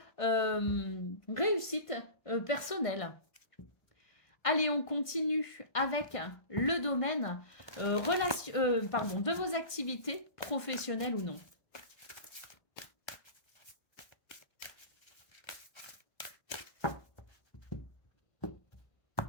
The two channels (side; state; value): right; late; 1.5 ms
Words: réussite personnelle. Allez, on continue avec le domaine de vos activités professionnelles ou non.